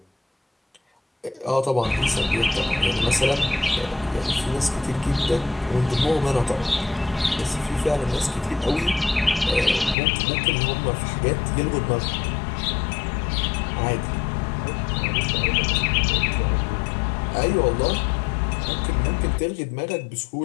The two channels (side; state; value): right; drops out; at 10.0 s